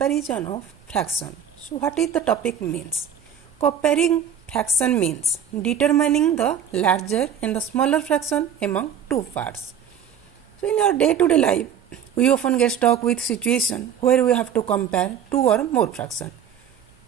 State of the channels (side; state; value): left; quieter; 8.5 dB